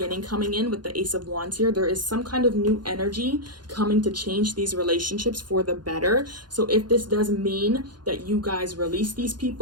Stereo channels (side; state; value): left; late; 0.71 ms